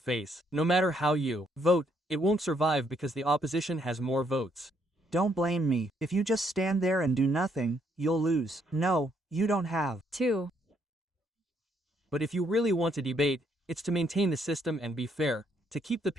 No matter how you vote, it won't survive because the opposition has more votes. Don't blame me. If you just stand there and do nothing, you'll lose. No, you don't have 2. But if you really want to debate, it's to maintain the system and be fair, to keep the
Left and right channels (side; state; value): both; normal; correlation 0.72